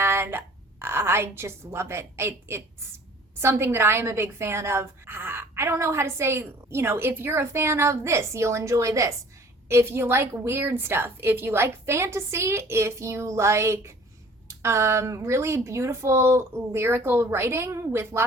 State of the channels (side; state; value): both; normal; correlation 0.51